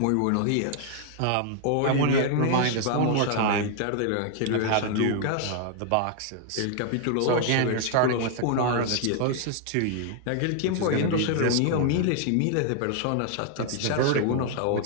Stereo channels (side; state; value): both; different; correlation 0.00